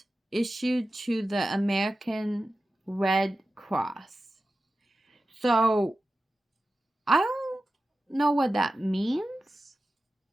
issued to the American Red Cross. So I don't know what that means,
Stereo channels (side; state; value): both; normal; correlation 0.94